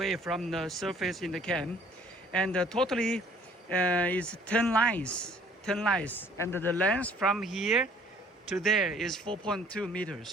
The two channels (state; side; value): normal; both; correlation 0.57